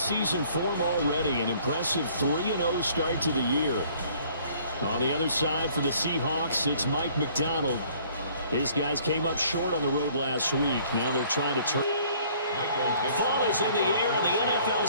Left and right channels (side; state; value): both; inverted; correlation -0.58